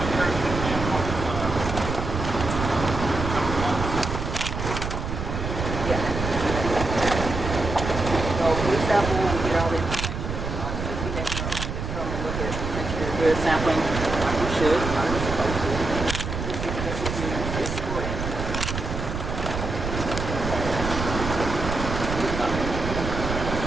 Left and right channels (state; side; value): noise; right; rumble, 4 dB below the sound